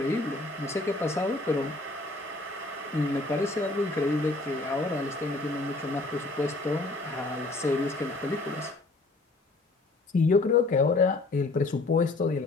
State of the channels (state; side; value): quieter; right; 3.1 dB